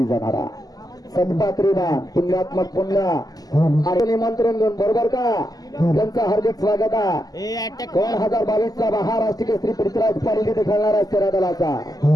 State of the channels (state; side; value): late; right; 0.18 ms